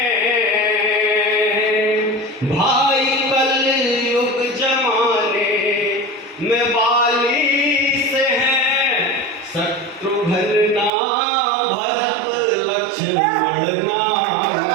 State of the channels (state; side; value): drops out; left; at 10.9 s